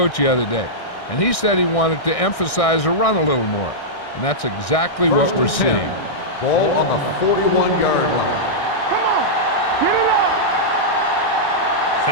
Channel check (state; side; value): late; right; 1.6 ms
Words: the other day, and he said he wanted to emphasize the run a little more. And that's exactly what we're seeing. Ball on the 41-yard line.